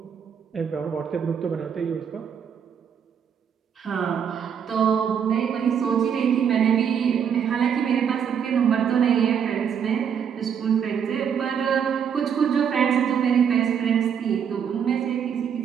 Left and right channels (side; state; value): left; quieter; 7.7 dB